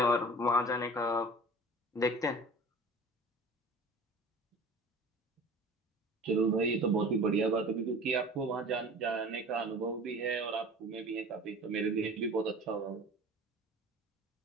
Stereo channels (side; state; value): both; normal; correlation 0.41